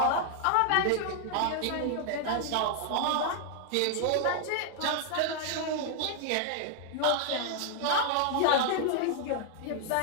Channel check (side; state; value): both; different; correlation 0.00